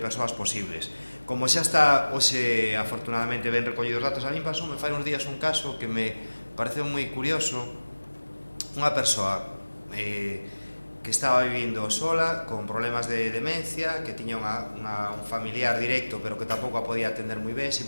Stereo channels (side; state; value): both; inverted; correlation -1.00